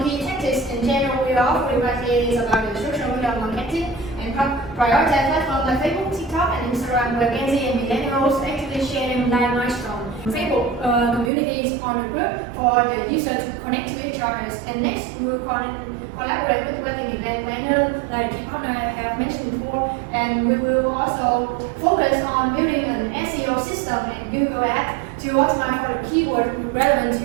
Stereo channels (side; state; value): left; drops out; at 11.3 s